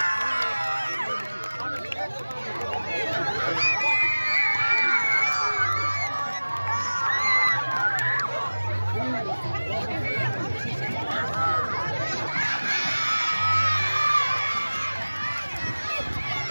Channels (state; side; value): inverted; both; correlation -1.00